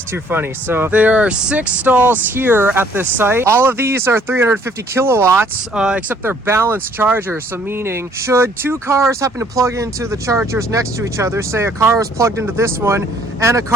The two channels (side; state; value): both; normal; correlation 0.61